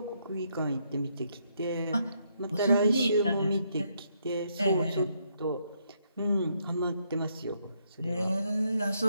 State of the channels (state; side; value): inverted; both; correlation -0.75